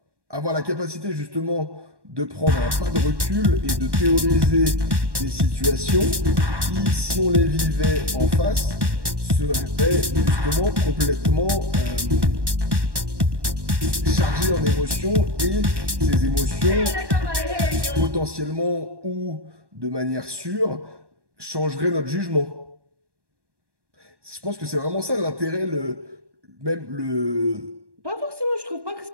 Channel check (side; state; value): left; late; 1.2 ms